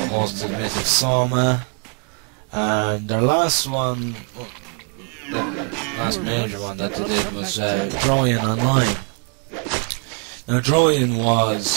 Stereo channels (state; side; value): quieter; left; 34.9 dB